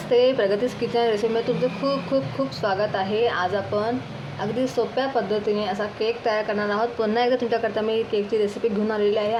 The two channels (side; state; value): both; identical; correlation 1.00